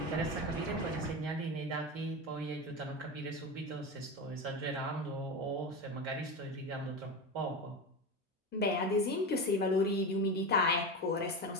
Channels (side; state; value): both; normal; correlation 0.21